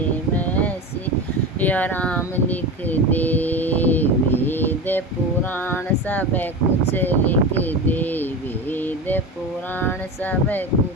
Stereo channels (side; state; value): both; normal; correlation 0.26